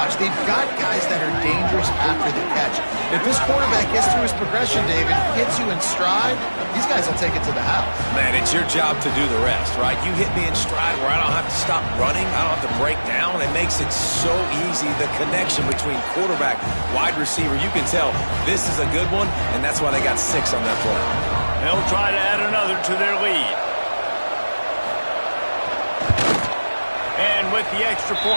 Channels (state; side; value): inverted; both; correlation -1.00